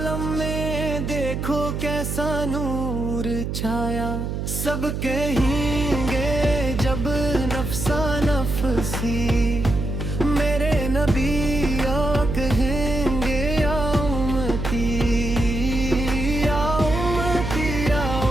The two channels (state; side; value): noise; right; hum, 3 dB below the sound